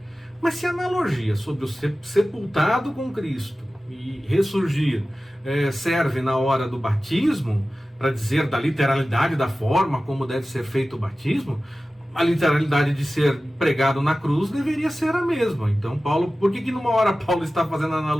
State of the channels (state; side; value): normal; both; correlation 0.96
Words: Mas se a analogia sobre o sepultado com Cristo e ressurgir serve na hora do batismo, para dizer da literalidade da forma como deve ser feito o batismo, a literalidade de ser pregado na cruz deveria ser a mesma. Então, Paulo, por que numa hora Paulo está fazendo